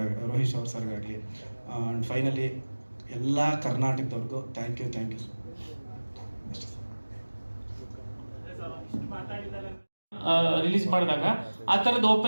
ಅವ್ರ ಸರ್ಗಾಗಲಿ. ಆ್ಯಂಡ್ ಫೈನಲಿ ಎಲ್ಲ ಕರ್ನಾಟಕದವ್ರಿಗೂ ಥ್ಯಾಂಕ್ ಯು ರಿಲೀಸ್ ಮಾಡಿದಾಗ ಆ ಥರದ್ದು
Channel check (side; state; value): both; inverted; correlation -1.00